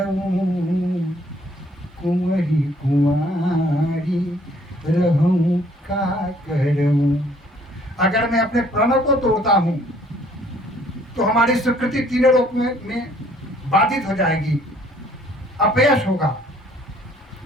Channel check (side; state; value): both; normal; correlation 0.61